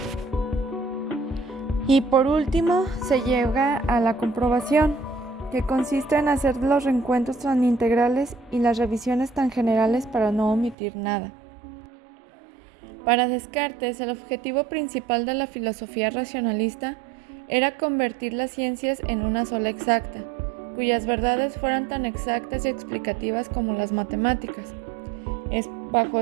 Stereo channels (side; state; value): left; drops out; at 10.8 s